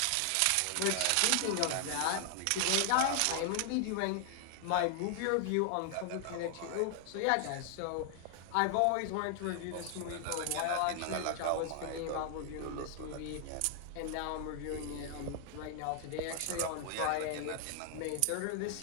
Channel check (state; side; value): different; both; correlation 0.00